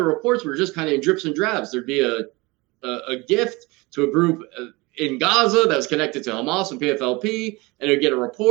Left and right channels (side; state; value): left; quieter; 24.0 dB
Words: reports were just kind of in drips and drabs. There'd be a gift to a group in Gaza that was connected to Hamas and PFLP, and it would get a